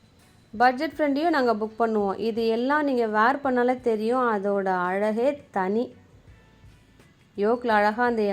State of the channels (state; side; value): identical; both; correlation 1.00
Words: பட்ஜெட் ஃப்ரெண்ட்லியும் நாங்கள் புக் பண்ணுவோம். இது எல்லாம் நீங்கள் வேர் பண்ணாலே தெரியும், அதோட அழகே தனி. யோக்கில் அழகாக அந்த